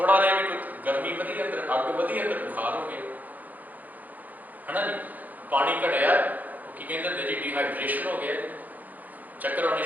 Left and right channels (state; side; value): late; left; 0.082 ms